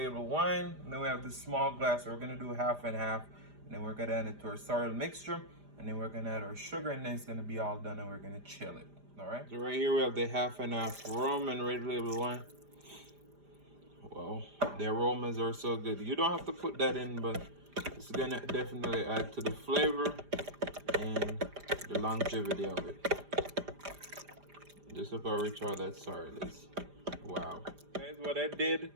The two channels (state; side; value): late; left; 5.0 ms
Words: wine. And then we have this small glass, so we're going to do half and half. And then we're gonna add it to our sorrel mixture, and then we're gonna add our sugar, and then it's gonna be all done, and we're gonna chill it. All right. So right here we have the half and half rum and red label wine. Well, the aromas are so good. You don't have to put that in, but it's gonna definitely add to the flavor and the longevity of it. Just look how rich all that sorrel is. Wow. Guys, what I did